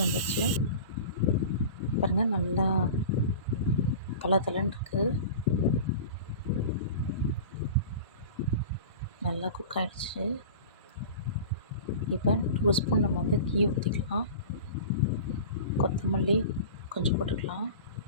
வந்துச்சு பாருங்கள், நல்லா தளன்னு இருக்குது. நல்லா குக் ஆகிடுச்சு. இப்போ 2 ஸ்பூன் நம்ம வந்து கீ ஊற்றிக்கலாம். கொத்தமல்லி கொஞ்சம் போட்டுக்கலாம்.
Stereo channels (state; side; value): inverted; both; correlation -0.36